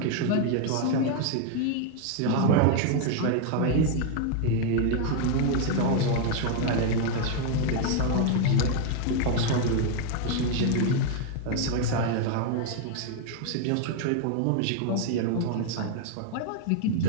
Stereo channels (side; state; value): both; different; correlation 0.00